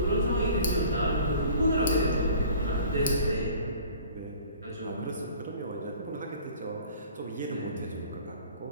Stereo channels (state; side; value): inverted; both; correlation -0.47